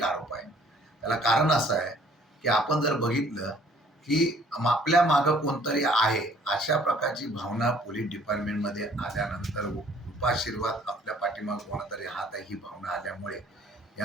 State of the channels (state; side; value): normal; both; correlation 0.57